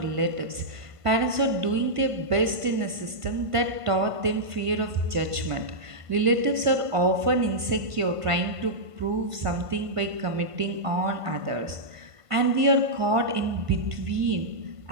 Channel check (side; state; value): left; late; 1.5 ms